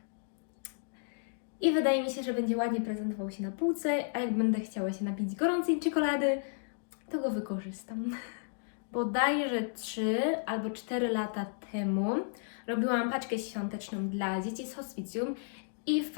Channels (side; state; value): right; silent; digital silence